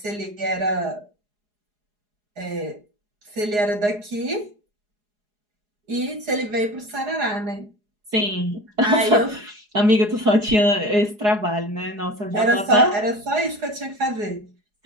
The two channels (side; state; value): left; late; 4.8 ms